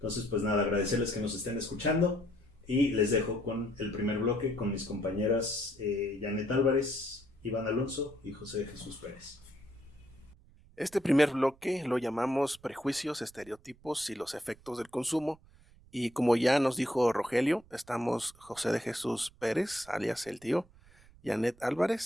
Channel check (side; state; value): right; noise; rumble, 26 dB below the sound